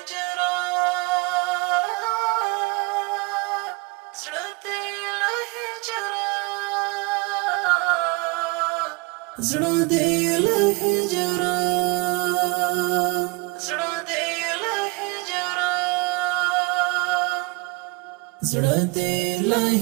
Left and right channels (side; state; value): left; quieter; 28.0 dB